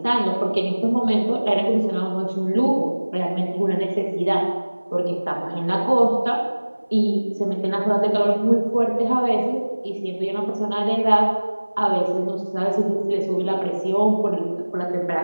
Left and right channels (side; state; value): both; inverted; correlation -1.00